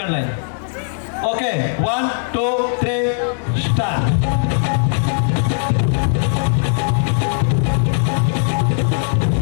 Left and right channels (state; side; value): silent; right; digital silence